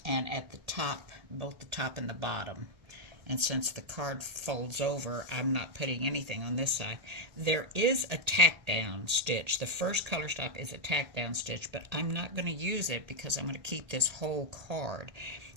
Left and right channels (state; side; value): late; left; 2.0 ms